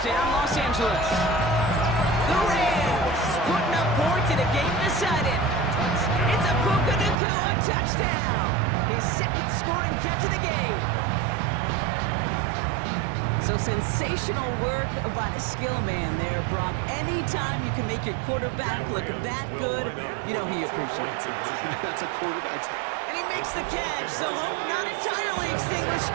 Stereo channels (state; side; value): drops out; left; at 7.2 s